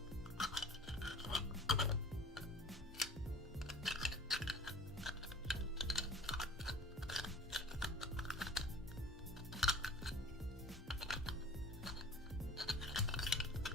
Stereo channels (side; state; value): both; normal; correlation 0.45